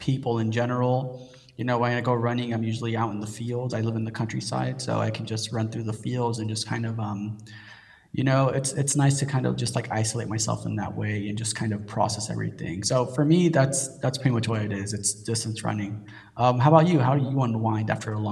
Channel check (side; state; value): both; identical; correlation 1.00